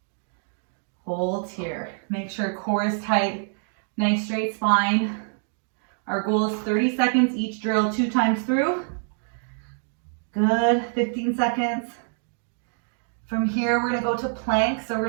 hold here. Make sure core is tight, nice straight spine. Our goal is 30 seconds each drill, 2 times through. Good, 15 seconds. From here, we're gonna go to plank. So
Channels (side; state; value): left; silent; 61 dB below the other